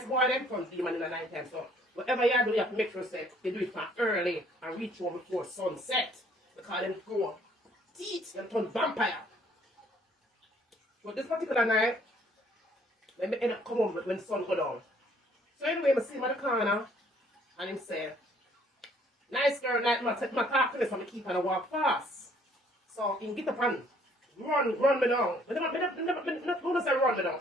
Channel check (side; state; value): both; normal; correlation 0.61